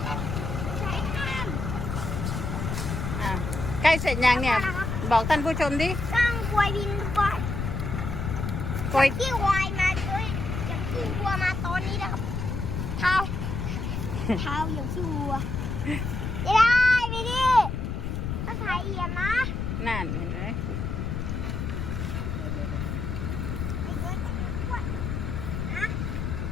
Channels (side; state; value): left; noise; rumble, 3 dB below the sound